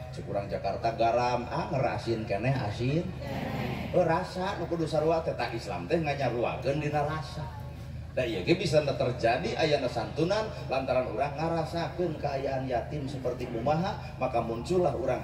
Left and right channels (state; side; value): identical; both; correlation 1.00